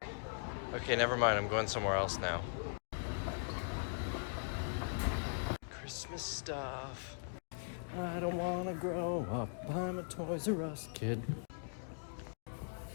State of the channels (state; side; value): silent; right; digital silence